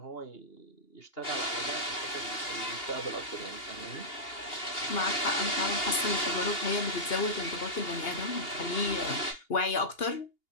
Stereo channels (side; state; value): right; late; 2.8 ms